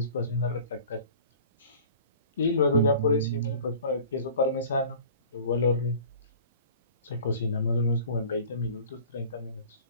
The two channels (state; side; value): inverted; both; correlation -0.44